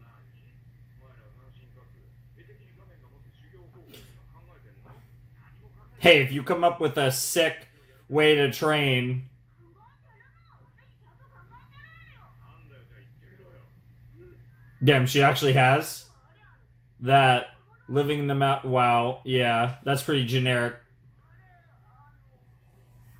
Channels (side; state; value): both; identical; correlation 1.00